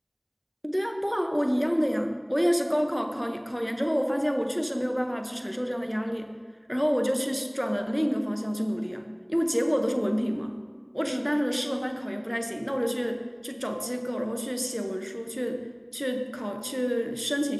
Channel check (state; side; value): identical; both; correlation 1.00